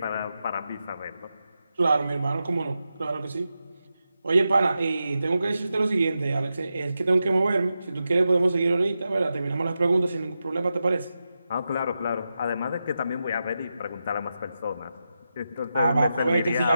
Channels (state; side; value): inverted; both; correlation -0.89